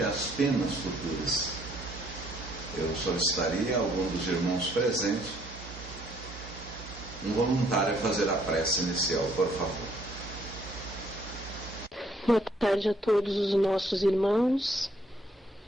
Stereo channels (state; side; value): normal; both; correlation 0.66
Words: as penas futuras. Eu solicitaria a algum dos irmãos presentes, um voluntário, a fazer a prece inicial, por favor. Boa tarde a todos os nossos irmãos